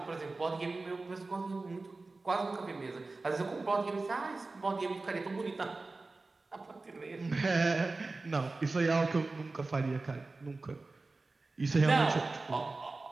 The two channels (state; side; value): quieter; left; 3.5 dB